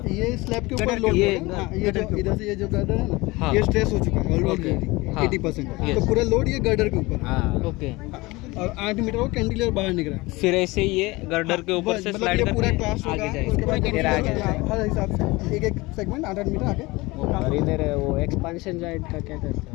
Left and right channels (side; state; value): right; quieter; 22.3 dB